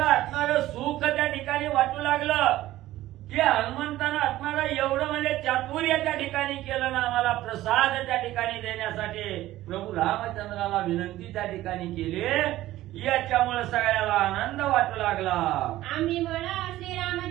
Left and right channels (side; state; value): left; quieter; 15.3 dB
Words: असणारं सुख त्या ठिकाणी वाटू लागलं की हनुमंतानं असणारं एवढं म्हणजे चातुर्य त्या ठिकाणी केलं ना आम्हाला प्रसाद त्या ठिकाणी देण्यासाठी प्रभू रामचंद्राला विनंती त्या ठिकाणी केली। याच्यामुळे सगळ्याला आनंद वाटू लागला। आम्ही म्हणा